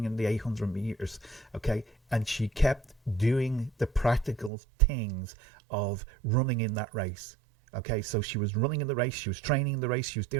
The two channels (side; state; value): left; drops out; at 4.5 s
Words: in the 800 meters. Okay, and she kept doing the practical things of running in that race. Okay, so she was running in the race, she was training in the race, she was